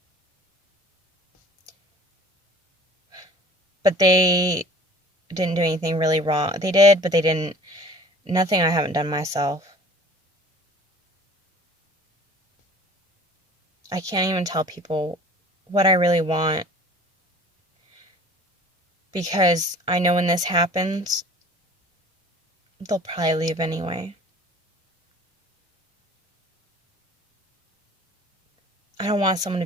But they didn't do anything really wrong. They did, but they didn't. Nothing I haven't done myself. I can't even tell people what I really want, because I know when this happens, they'll probably leave anyway. I don't want someone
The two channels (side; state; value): both; normal; correlation 0.47